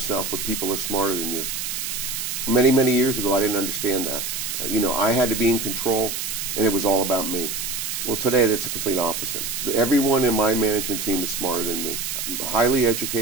with people who are smarter than you. Many, many years ago, I didn't understand that. I had to be in control, and it was all about me. Well, today, that's a complete opposite. Everyone in my management team is smarter than me. Highly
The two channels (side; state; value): right; noise; hiss, 4 dB below the sound